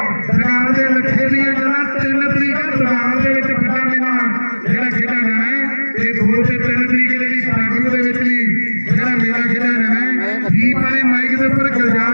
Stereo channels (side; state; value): both; inverted; correlation -1.00